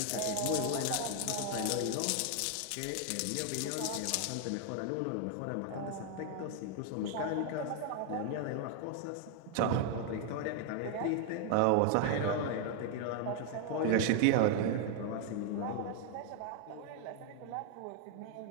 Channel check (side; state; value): both; different; correlation 0.00